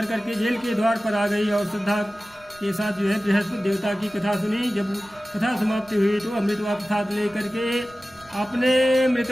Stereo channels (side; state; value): right; noise; rumble, 28 dB below the sound